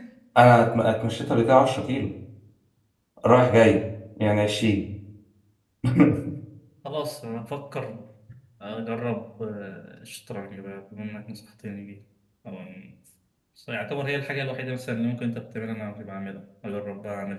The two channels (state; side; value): identical; both; correlation 1.00